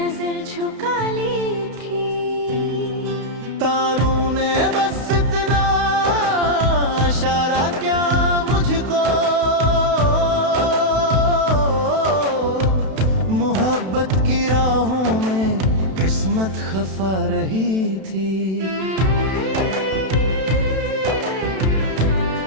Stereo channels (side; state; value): left; late; 32 ms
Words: झुका ली थी। तारों ने बस इतना इशारा क्या मुझको, मोहब्बत की राहों में किस्मत खफा रही थी।